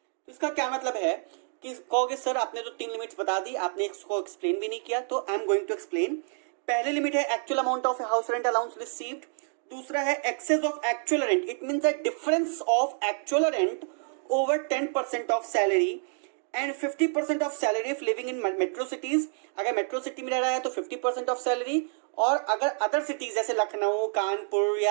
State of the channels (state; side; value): silent; left; 59 dB below the other